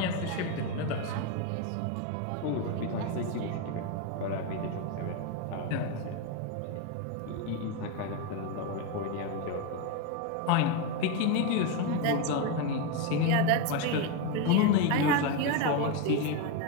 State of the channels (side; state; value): both; different; correlation 0.03